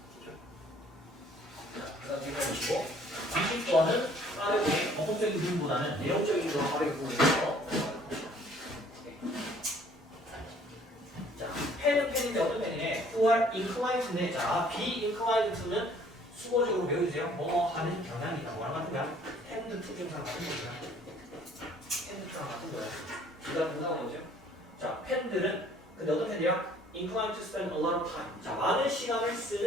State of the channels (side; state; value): both; normal; correlation 0.57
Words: 자, 그 다음 제가 보시고 20번은 빠르게 법적인 부분보다는 내용적인 거 빠르게 보면서 자, 펜은 펜인데 어떤 펜이네? who are inclined인데 자, be inclined to는 수어적으로 배워주세요. 뭐 하는 경향이 있다. 뭐랑 같은 거야? tend to 경상 같은 거야. tend to랑 같은 거야. 그 다음 동사가 뭐죠? 자, 펜들은 근데 어떤 펜이야? inclined to spend a lot of time. 자, 많은 시간을